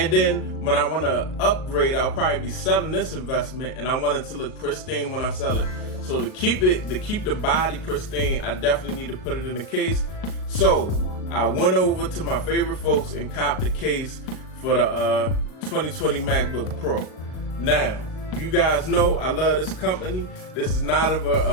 then when I want to upgrade, I'll probably be selling this investment, and I want it to look pristine when I sell it. So to keep the body pristine, I definitely need to put it in the case. So I went over to my favorite folks and copped the case for the 2020 MacBook Pro. Now, you guys know I love this company. This is not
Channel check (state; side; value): late; right; 38 ms